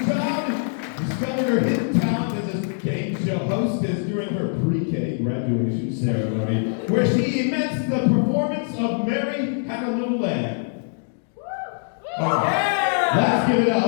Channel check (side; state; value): right; silent; digital silence